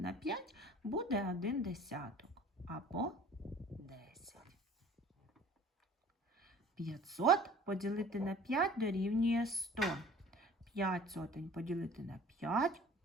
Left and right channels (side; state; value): both; normal; correlation 0.48